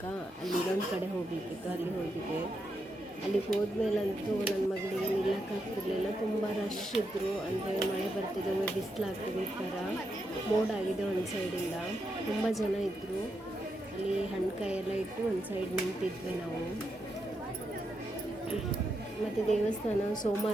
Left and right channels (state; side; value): normal; both; correlation 0.83